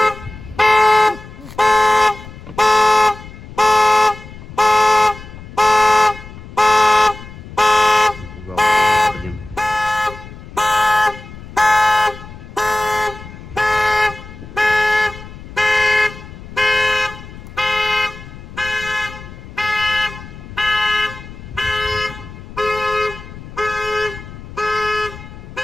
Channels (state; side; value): noise; left; rumble, 15 dB below the sound